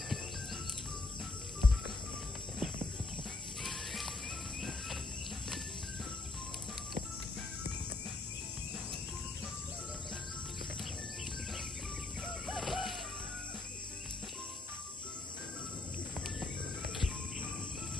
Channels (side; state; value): right; quieter; 3.2 dB